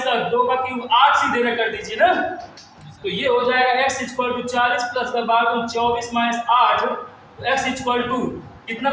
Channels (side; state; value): both; identical; correlation 1.00